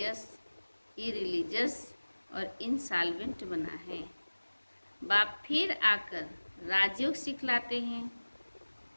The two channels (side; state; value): both; inverted; correlation -1.00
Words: इरिलीजियस और इंसॉल्वेंट बना है। बाप फिर आकर राजयोग सिखलाते हैं,